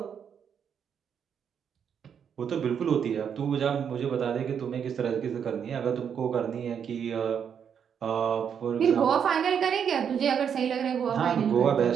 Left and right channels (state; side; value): quieter; left; 7.7 dB